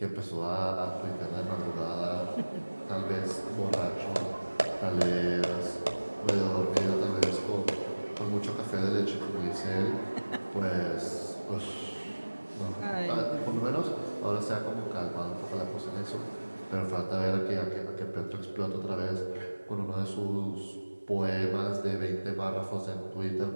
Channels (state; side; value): inverted; both; correlation -1.00